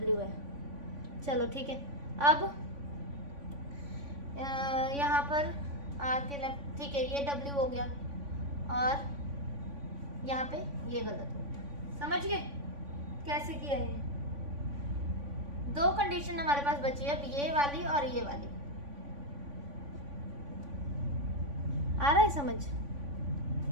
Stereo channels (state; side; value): late; left; 3.5 ms